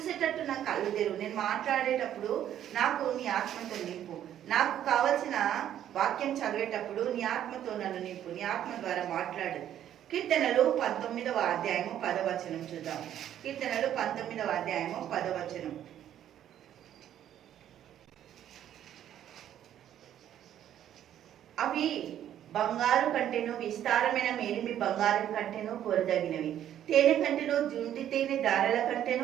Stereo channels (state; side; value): quieter; left; 10.9 dB